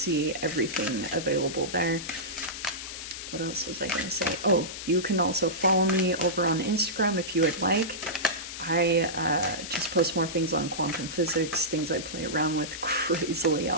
everything available there. What else was I going to say? Oh, you can also follow me over on Instagram if you would like. I just post more things on quantum physics, things I play around with, crazily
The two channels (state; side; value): noise; left; hiss, 9 dB below the sound